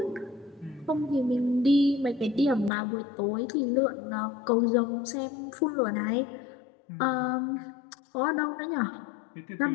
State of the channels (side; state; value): right; drops out; at 2.7 s